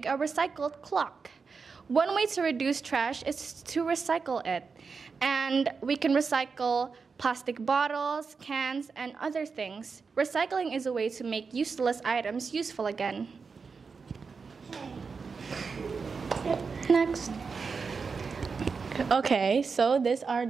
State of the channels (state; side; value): quieter; left; 5.1 dB